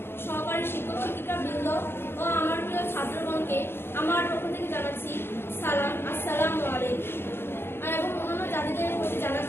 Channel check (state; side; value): late; right; 0.11 ms